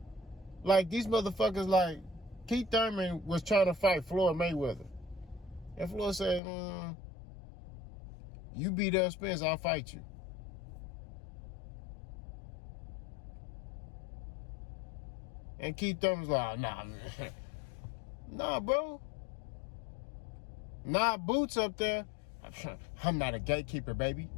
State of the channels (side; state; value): right; drops out; at 6.4 s